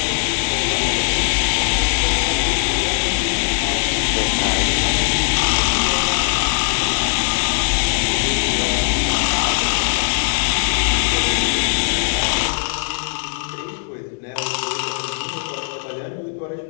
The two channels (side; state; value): right; silent; digital silence